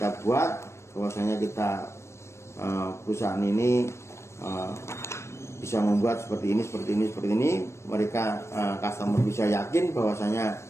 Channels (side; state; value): right; late; 0.13 ms